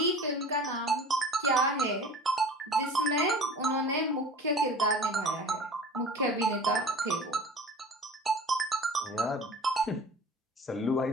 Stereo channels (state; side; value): normal; both; correlation 0.41